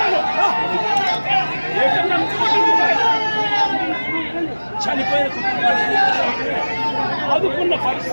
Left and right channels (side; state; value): both; inverted; correlation -1.00